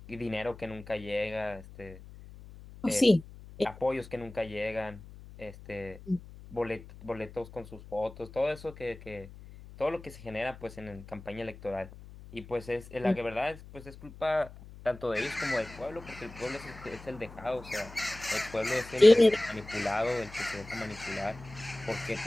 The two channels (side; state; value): left; noise; hum, 17 dB below the sound